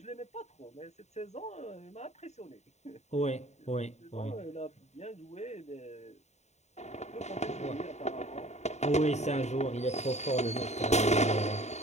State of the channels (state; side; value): late; right; 0.32 ms